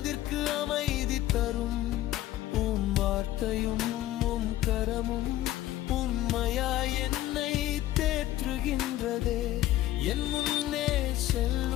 அமைதி தரும். உம் வார்த்தையும் உம் கரமும் உண்மையாய் என்னை தேற்றுகின்றதே. என் முன்னே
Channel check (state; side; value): quieter; right; 14.5 dB